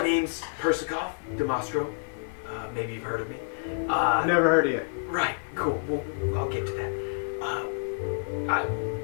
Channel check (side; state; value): right; silent; digital silence